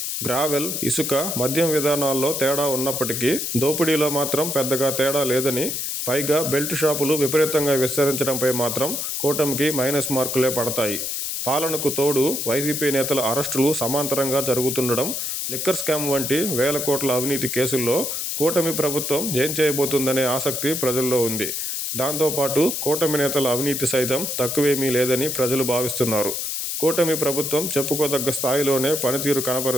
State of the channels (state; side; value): noise; left; hiss, 3 dB below the sound